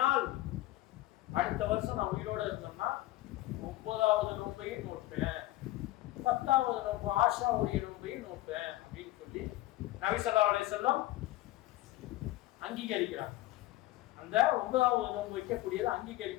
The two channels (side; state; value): right; quieter; 16.6 dB